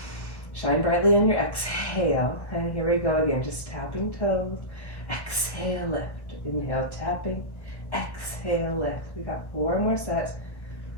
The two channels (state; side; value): late; right; 1.3 ms